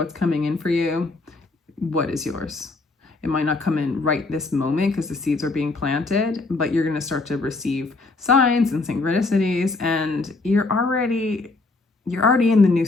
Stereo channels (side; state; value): right; quieter; 3.4 dB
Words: coming in for you? What is yours? It might not come in right this moment because the seeds are being planted, but you're going to start to receive signs and synchronicities, and you're already in the new